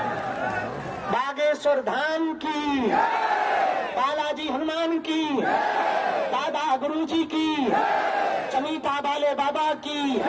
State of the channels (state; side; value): identical; both; correlation 1.00